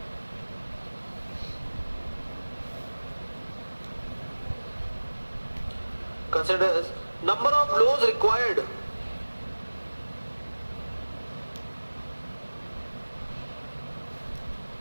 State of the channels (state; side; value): inverted; both; correlation -1.00